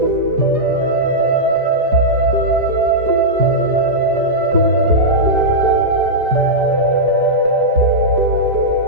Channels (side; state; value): left; late; 4.9 ms